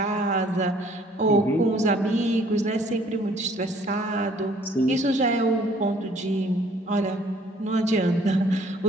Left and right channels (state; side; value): normal; both; correlation 0.58